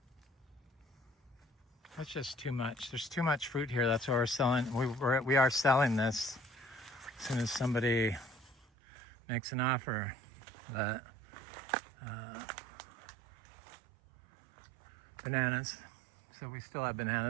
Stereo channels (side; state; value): left; drops out; at 8.7 s